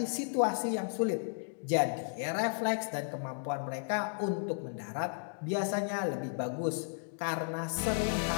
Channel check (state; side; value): silent; right; digital silence